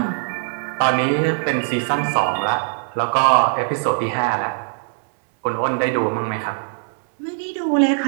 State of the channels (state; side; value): silent; left; 64 dB below the other